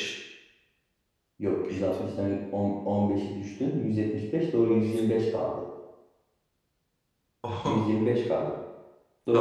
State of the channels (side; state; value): both; identical; correlation 1.00